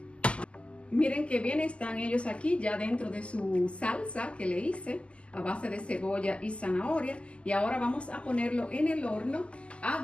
Miren qué bien están ellos aquí ya dentro de su salsa que le hice a base de cebolla y zanahoria. Y ahora vamos a ponerlo en el horno a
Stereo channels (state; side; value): late; right; 0.055 ms